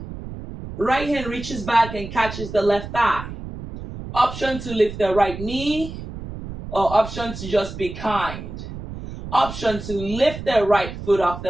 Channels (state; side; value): noise; right; rumble, 10 dB below the sound